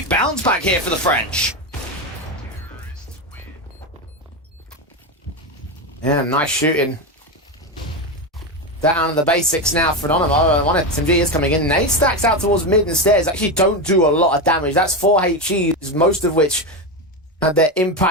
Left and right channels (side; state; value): both; normal; correlation 0.14